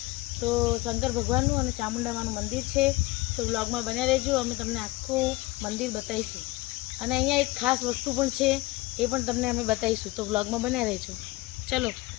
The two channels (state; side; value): quieter; right; 20.7 dB